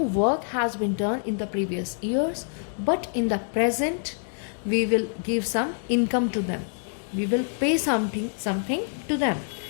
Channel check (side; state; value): right; silent; digital silence